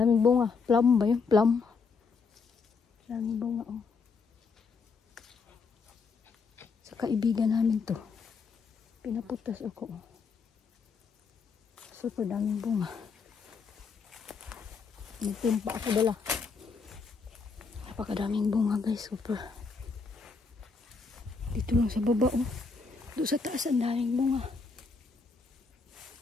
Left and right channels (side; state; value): right; quieter; 4.9 dB